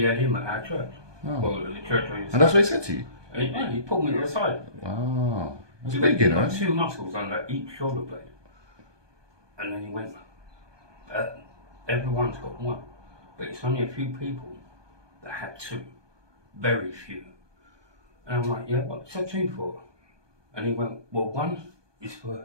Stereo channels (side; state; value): left; late; 1.2 ms